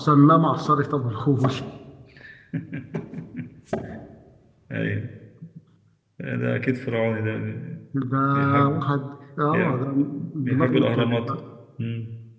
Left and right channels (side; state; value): both; identical; correlation 1.00